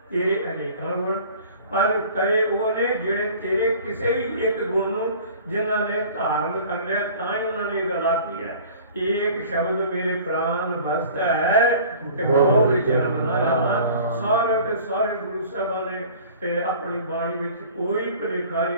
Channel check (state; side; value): inverted; both; correlation -0.46